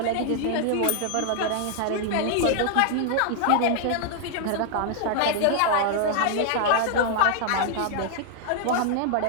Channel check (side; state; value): both; different; correlation 0.00